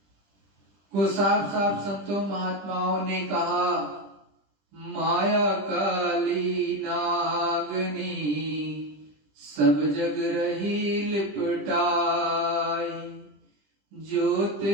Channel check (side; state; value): left; late; 20 ms